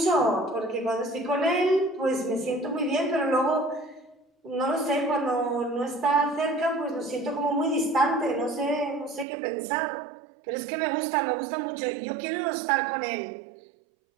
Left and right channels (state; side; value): drops out; left; at 9.2 s